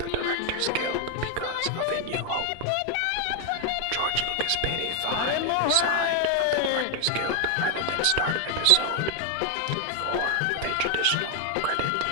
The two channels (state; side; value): different; both; correlation 0.01